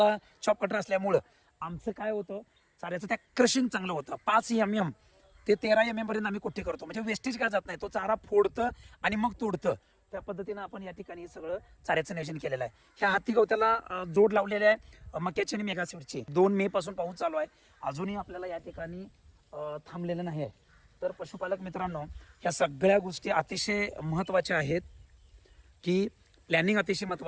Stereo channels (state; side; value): identical; both; correlation 1.00